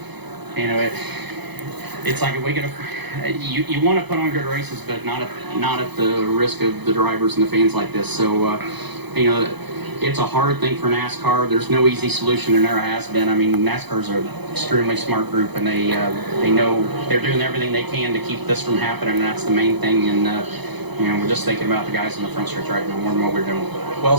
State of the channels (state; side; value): late; left; 0.99 ms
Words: you know, it's like if we get you want to put on good races, but not at the risk of the drivers and the fans like this. So you know, it's a hard thing for NASCAR. There's no easy solution, and never has been. I mean, NASCAR's an extremely smart group, and they know they're doing everything they can to keep this from happening, and that's the main thing. And you know, we're just thinking about the guys in the front stretch right now more than what we're doing. Well